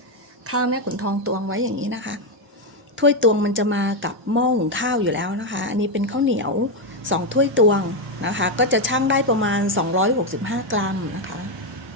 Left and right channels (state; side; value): normal; both; correlation 0.05